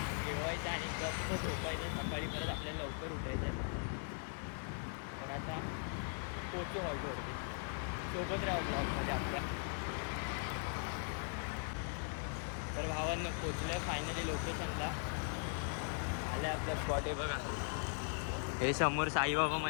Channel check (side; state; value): right; silent; 51 dB below the other